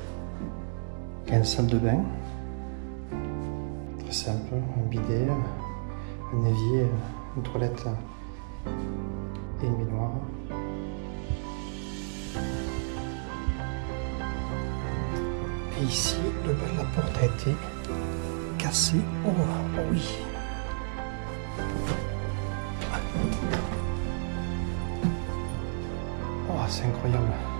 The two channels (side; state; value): left; silent; digital silence